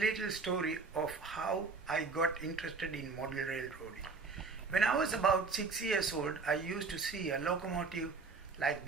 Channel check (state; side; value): quieter; left; 4.5 dB